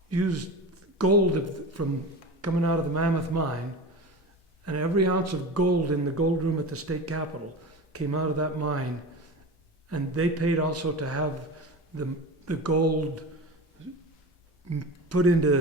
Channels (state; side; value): normal; both; correlation 0.29